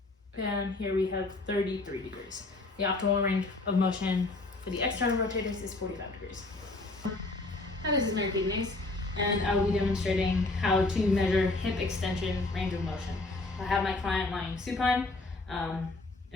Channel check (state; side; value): quieter; right; 3.1 dB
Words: And here we have 33 degrees. The optimal range of motion for the external rotators is 45 degrees. Hi, this is Mary Kidneys, and I will be demonstrating how to measure hip extension range of motion. I have my client lying supine,